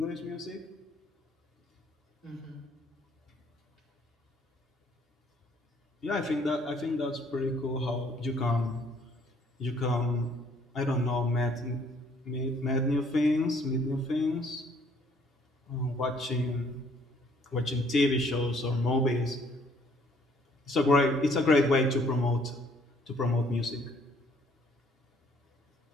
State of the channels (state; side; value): normal; both; correlation 0.62